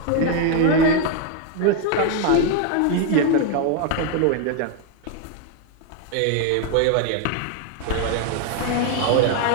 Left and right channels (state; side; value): different; both; correlation 0.01